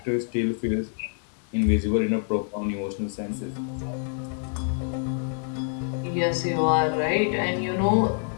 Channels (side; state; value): right; silent; 61 dB below the other